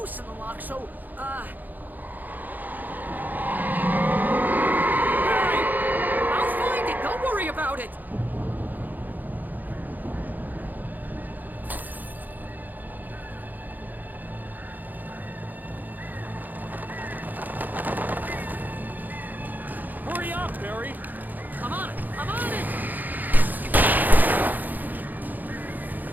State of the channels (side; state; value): left; late; 0.084 ms